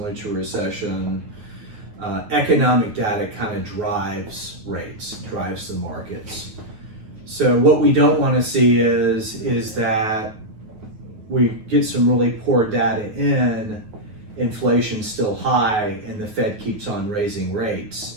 to a recession, economic data kind of drives rates, drives the markets. So what we don't want to see is that we get some really poor data in, inflation's still high, and the Fed keeps on raising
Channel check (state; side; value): late; left; 9.4 ms